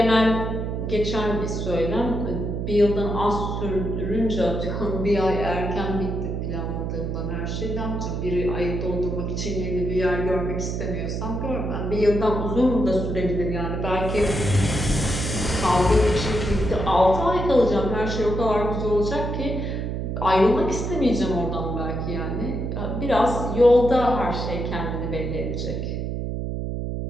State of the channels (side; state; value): right; noise; hum, 3 dB below the sound